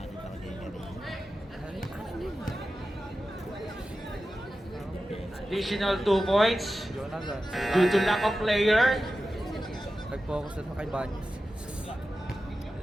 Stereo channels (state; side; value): normal; both; correlation 0.93